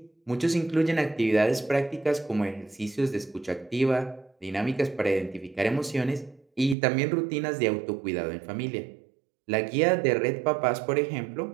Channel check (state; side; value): drops out; left; at 6.8 s